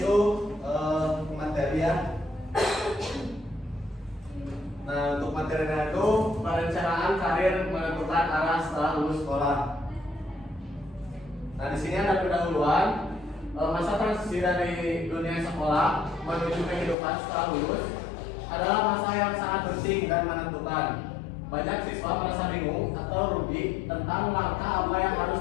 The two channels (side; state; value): right; drops out; at 16.9 s